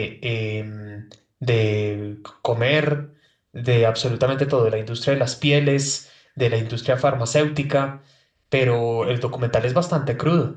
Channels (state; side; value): identical; both; correlation 1.00